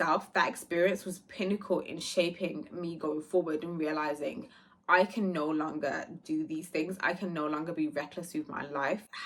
that experience was pinnacle in shaping me going forward and realizing I can no longer do these things. I can no longer be reckless with my life,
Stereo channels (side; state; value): both; identical; correlation 1.00